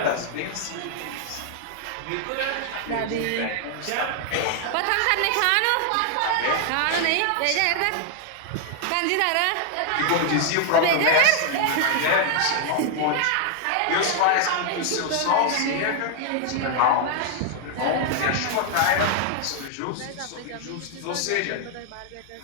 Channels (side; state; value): both; different; correlation 0.00